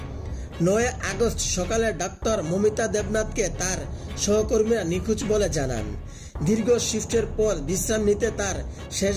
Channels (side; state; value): both; identical; correlation 1.00